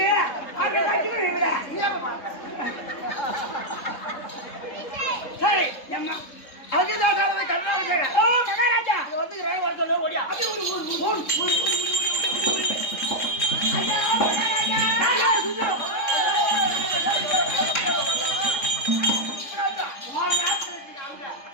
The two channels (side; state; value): right; late; 3.7 ms